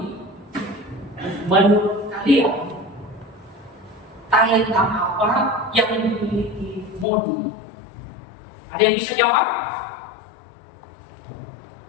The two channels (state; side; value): drops out; right; at 7.1 s